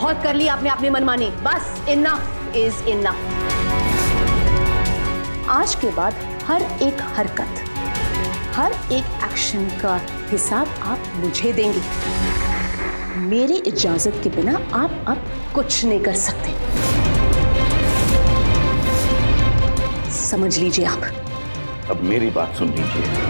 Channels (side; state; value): both; inverted; correlation -1.00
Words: कर लिया आपने अपनी मनमानी, बस इनफ इज इनफ। आज के बाद हर एक हरकत, हर एक एक्शन का हिसाब आप मुझे देंगे। मेरी इजाजत के बिना आप अब कुछ नहीं कर सकते, समझ लीजिए आप। अब मेरी बात सुन लीजिए।